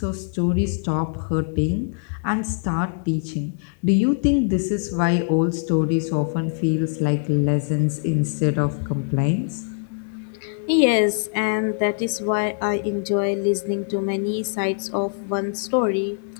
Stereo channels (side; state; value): right; silent; digital silence